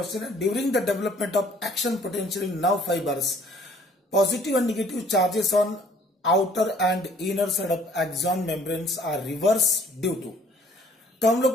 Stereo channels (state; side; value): normal; both; correlation 0.58